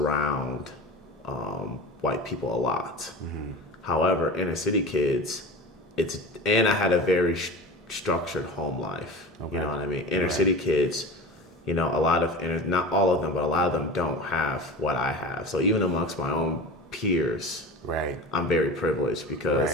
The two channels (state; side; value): normal; both; correlation 0.32